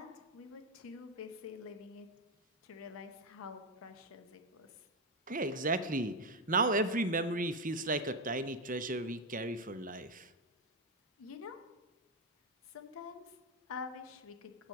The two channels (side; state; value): both; normal; correlation 0.08